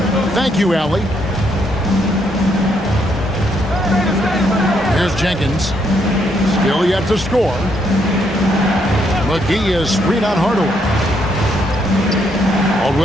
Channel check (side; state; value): both; normal; correlation 0.74